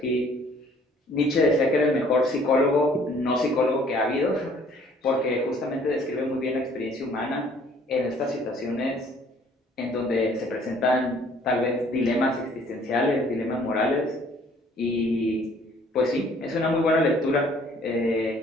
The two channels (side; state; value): both; normal; correlation 0.58